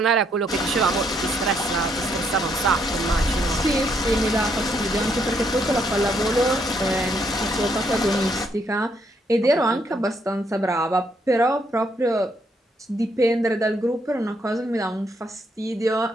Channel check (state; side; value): normal; both; correlation 0.73